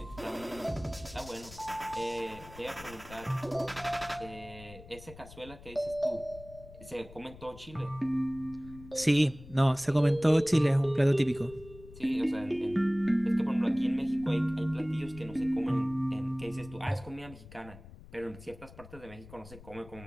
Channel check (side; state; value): left; noise; rumble, 18 dB below the sound